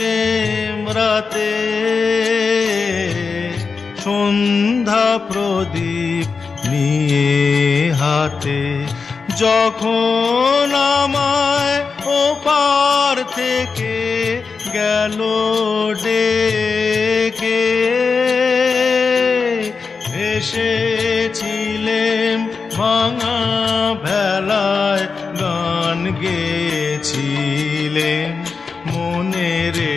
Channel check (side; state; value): right; quieter; 4.9 dB